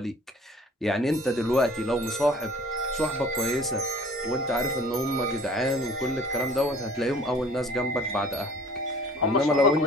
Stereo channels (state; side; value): normal; both; correlation 0.49